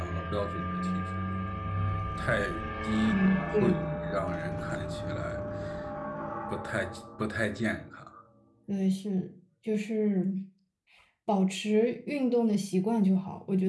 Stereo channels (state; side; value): identical; both; correlation 1.00